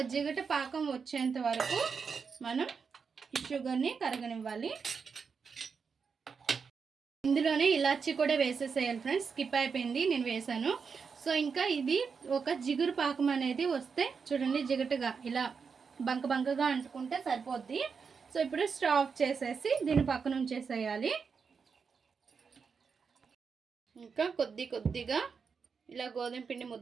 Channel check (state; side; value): quieter; left; 5.7 dB